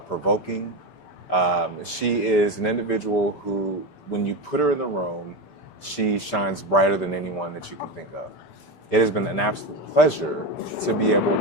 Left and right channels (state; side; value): late; right; 6.8 ms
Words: provoking. She is an individual who, when you put her in the room, she shines brighter than anyone that you can think of. It has been an absolute pleasure to be able